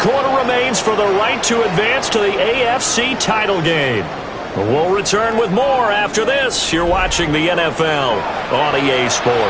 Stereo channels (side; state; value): both; identical; correlation 1.00